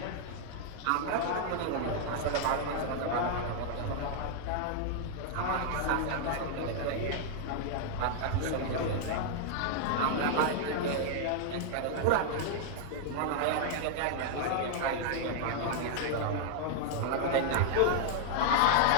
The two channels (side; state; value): both; different; correlation 0.00